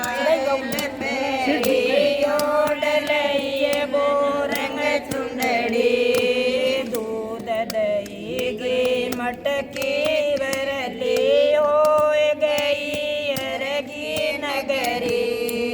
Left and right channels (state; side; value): identical; both; correlation 1.00